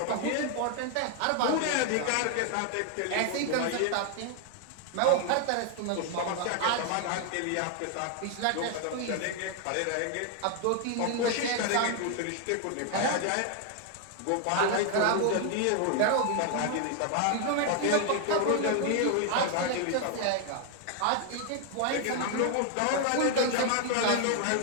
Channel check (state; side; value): different; both; correlation 0.00